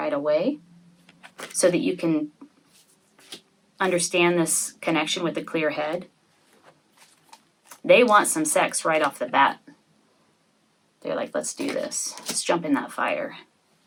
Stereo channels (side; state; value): both; identical; correlation 1.00